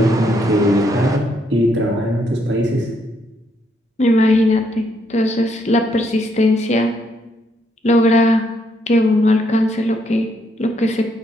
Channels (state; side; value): normal; both; correlation 0.74